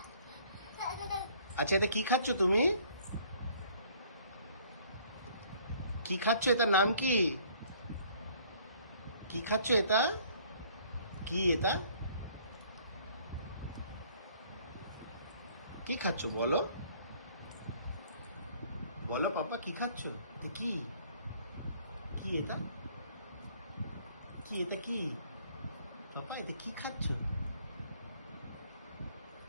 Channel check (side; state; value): both; inverted; correlation -0.58